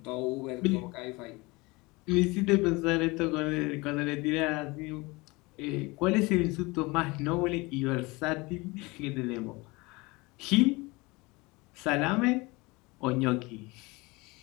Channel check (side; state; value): right; quieter; 24.2 dB